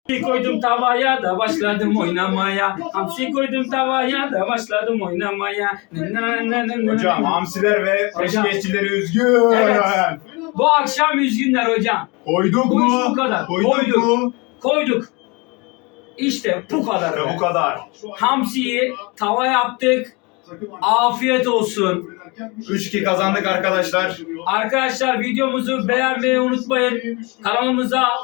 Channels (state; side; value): quieter; right; 27.5 dB